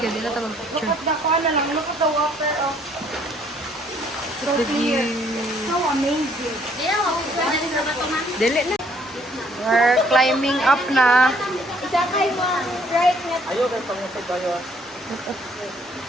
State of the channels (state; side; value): normal; both; correlation 0.64